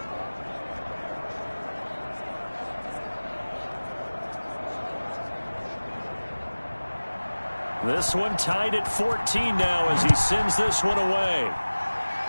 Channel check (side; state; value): both; inverted; correlation -1.00